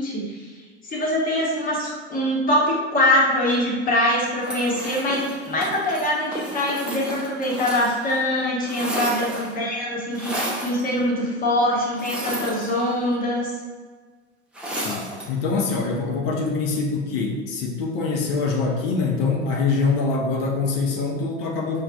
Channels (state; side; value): normal; both; correlation 0.18